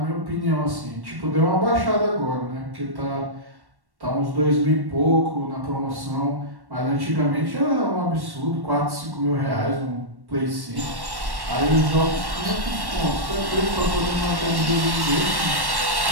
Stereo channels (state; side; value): late; left; 1.1 ms